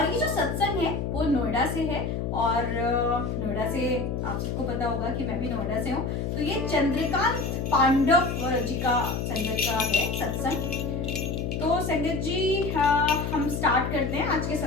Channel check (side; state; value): left; noise; hum, 2 dB below the sound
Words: ये जो सत्संग है वो नोएडा से है। और नोएडा से आप सबको पता होगा कि मैं भी नोएडा से हूँ। तो ये चंद्रकांत पांडव जी का संगत का है सत्संग। तो संगत जी, हम स्टार्ट करते हैं आज के